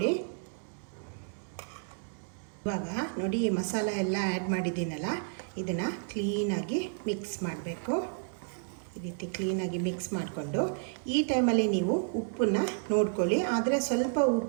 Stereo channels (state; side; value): silent; left; digital silence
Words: ಇವಾಗ ನೋಡಿ, ಈ ಮಸಾಲ ಎಲ್ಲ ಆ್ಯಡ್ ಮಾಡಿದ್ದೀನಲ್ಲ, ಇದನ್ನು ಕ್ಲೀನಾಗಿ ಮಿಕ್ಸ್ ಮಾಡಬೇಕು. ಈ ರೀತಿ ಕ್ಲೀನಾಗಿ ಮಿಕ್ಸ್ ಮಾಡಿಕೊಂಡು ಈ ಟೈಮಲ್ಲಿ ನೀವು ಉಪ್ಪನ್ನು ನೋಡ್ಕೊಳ್ಳಿ. ಆದರೆ ಸ್ವಲ್ಪ